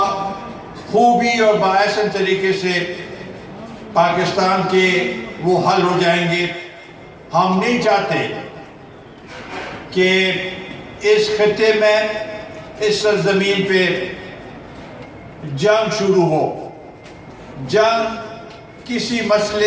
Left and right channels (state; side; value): identical; both; correlation 1.00